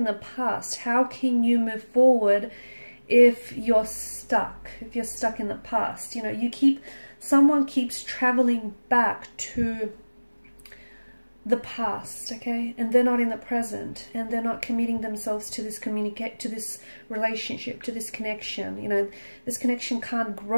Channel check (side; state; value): both; inverted; correlation -1.00